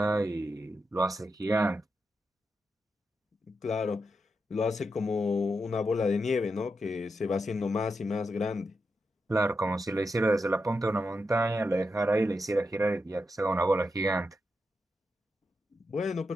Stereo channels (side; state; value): both; normal; correlation 0.86